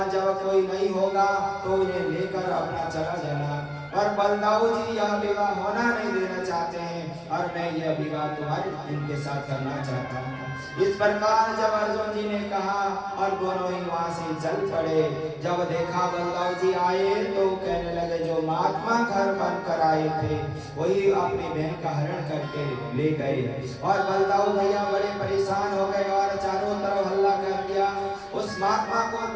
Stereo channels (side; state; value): both; identical; correlation 1.00